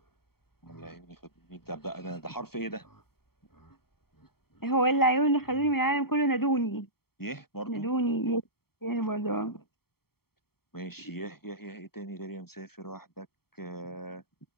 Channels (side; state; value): right; late; 0.95 ms